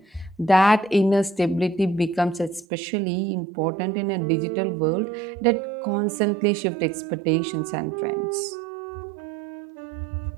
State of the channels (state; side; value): drops out; left; at 2.7 s